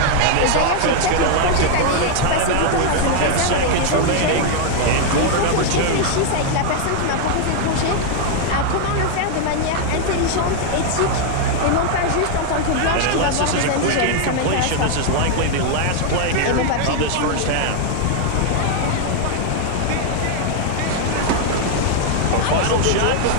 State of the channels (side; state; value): both; different; correlation 0.00